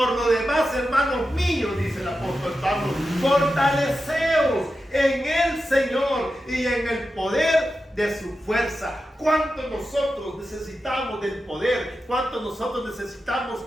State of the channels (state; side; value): normal; both; correlation 0.91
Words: lo demás, hermanos míos, dice el apóstol Pablo, fortaleceos en el Señor y en el poder de su fuerza. ¿Cuánto nosotros necesitamos del poder? ¿Cuánto nosotros necesitamos